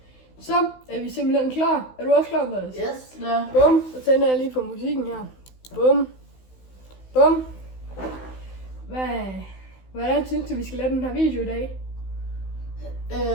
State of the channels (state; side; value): late; right; 16 ms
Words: Så er vi simpelthen klar. Er du også klar, Boris? Yes, ja. Bum, så tænder jeg lige på musikken her. Bum. Bum. Hvordan synes du, vi skal lave den her video i dag?